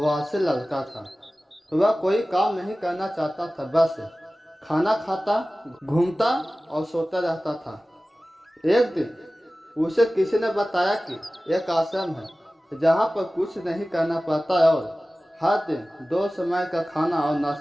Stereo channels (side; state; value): both; normal; correlation 0.97